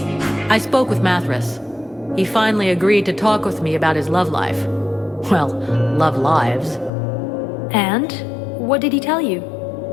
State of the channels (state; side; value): drops out; right; at 6.9 s